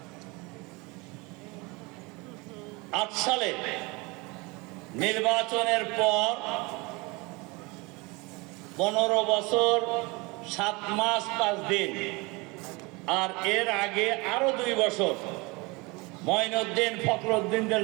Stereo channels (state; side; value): quieter; left; 26.0 dB